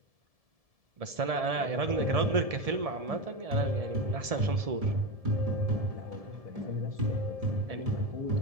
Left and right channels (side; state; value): left; late; 1.7 ms